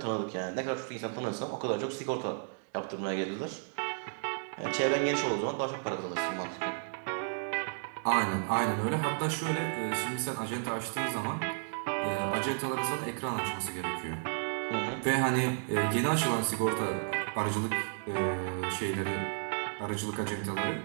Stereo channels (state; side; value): silent; left; digital silence